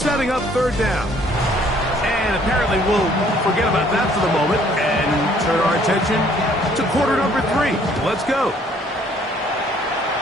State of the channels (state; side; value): normal; both; correlation 0.61